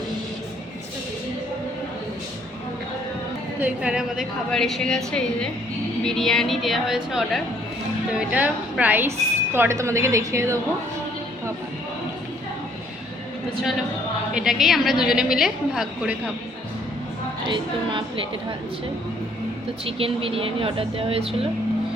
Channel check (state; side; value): normal; both; correlation 0.64